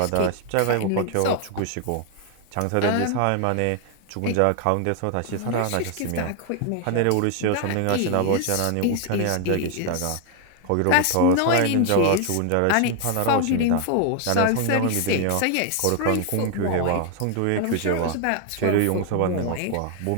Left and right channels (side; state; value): both; different; correlation 0.00